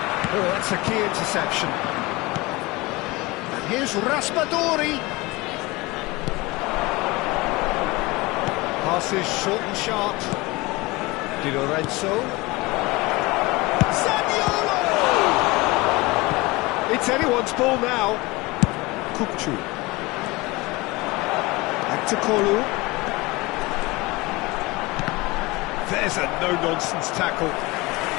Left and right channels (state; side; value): quieter; right; 22.3 dB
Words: Oh, that's a key interception. And here's Raspadori. Passes short and sharp. Di Lorenzo. Zaniolo! It's anyone's ball now. Kupchu. Back to Kolu. There's a no-nonsense tackle.